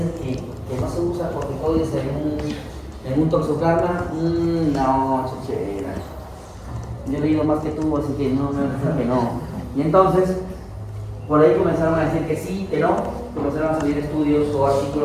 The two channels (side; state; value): both; identical; correlation 1.00